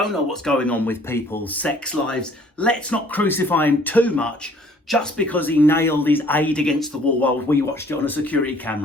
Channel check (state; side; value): normal; both; correlation 0.57